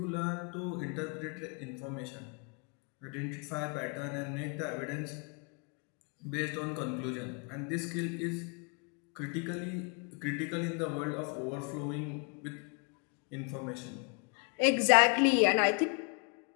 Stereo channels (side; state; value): right; quieter; 35.8 dB